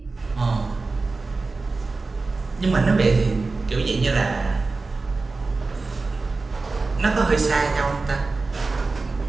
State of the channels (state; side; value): quieter; left; 3.8 dB